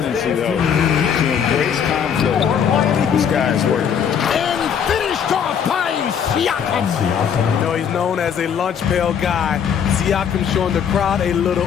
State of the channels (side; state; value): right; quieter; 7.8 dB